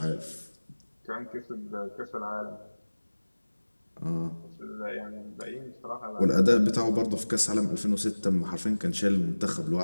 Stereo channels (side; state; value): both; inverted; correlation -1.00